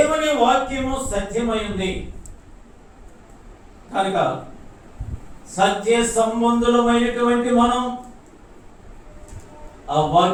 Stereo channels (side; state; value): both; identical; correlation 1.00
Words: వాక్యము సత్యమైంది కనుక సత్య సంబంధులమైనటువంటి మనం ఆ